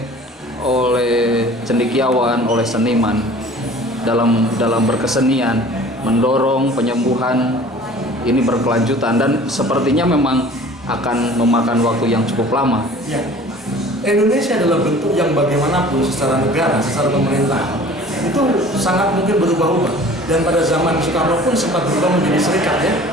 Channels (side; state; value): both; normal; correlation 0.46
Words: cendekiawan, oleh seniman dalam berkesenian mendorong penyembuhan ini berkelanjutan, dan sepertinya memang akan memakan waktu yang cukup lama. Ya. Indonesia adalah bentuk yang bagaimanapun secara negara, secara pemerintah itu sangat mungkin berubah-ubah, dan pada zaman Soekarno pun sempat berubah menjadi serikat ya.